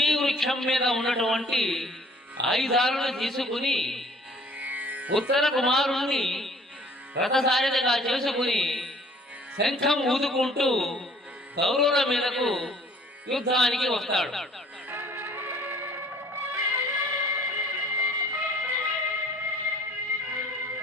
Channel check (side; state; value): both; normal; correlation 0.55